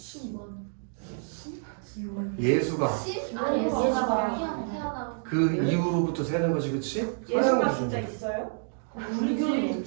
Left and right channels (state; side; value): silent; left; digital silence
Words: 예수가 아니 얘가 태어나. 그 이후로부터 세는 거지, 그치? 예수가 기준. 진짜 있어요? 우리 교는